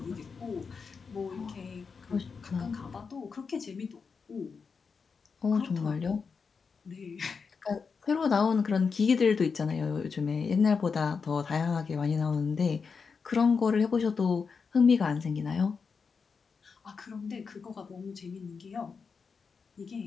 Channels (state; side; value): quieter; right; 5.4 dB